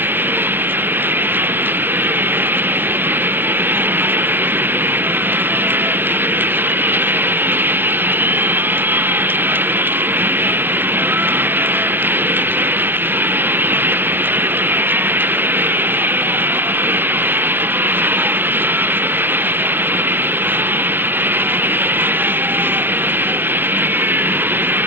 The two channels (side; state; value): left; late; 0.099 ms